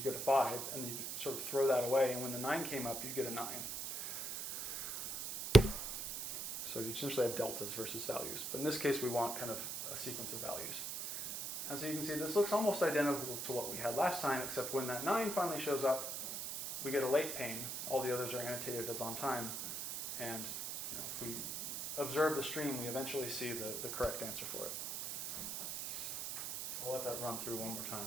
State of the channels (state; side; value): noise; right; hiss, 5 dB below the sound